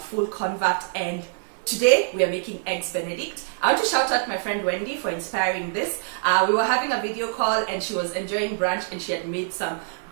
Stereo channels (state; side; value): silent; left; digital silence